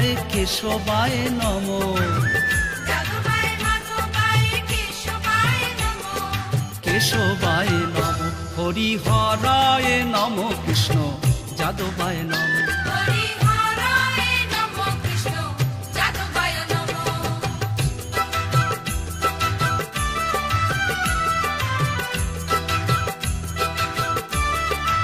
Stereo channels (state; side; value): identical; both; correlation 1.00